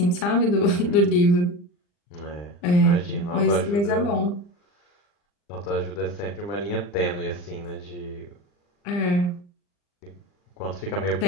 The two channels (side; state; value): right; late; 40 ms